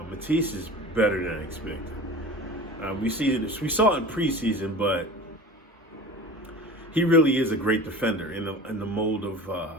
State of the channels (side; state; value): both; normal; correlation 0.37